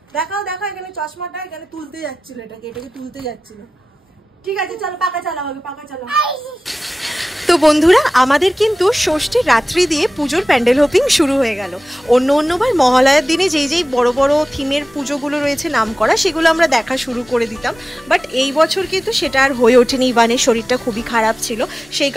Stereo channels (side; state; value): both; normal; correlation 0.96